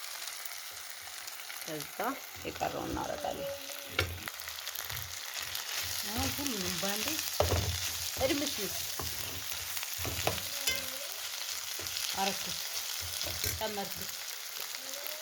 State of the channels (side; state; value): both; identical; correlation 1.00